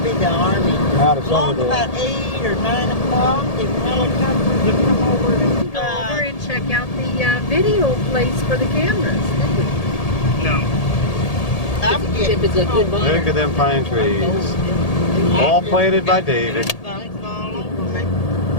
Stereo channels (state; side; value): late; right; 1.8 ms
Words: be the Army. Out of Along Summerdale. about 8 or 9 o'clock, the helicopters would come over and Go over and check out the video place for the cameras. If it's a good one. Look at them pine trees. All planted by David.